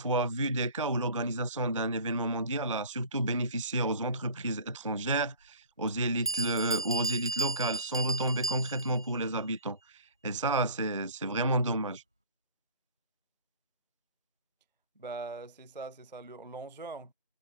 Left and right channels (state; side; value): inverted; both; correlation -0.43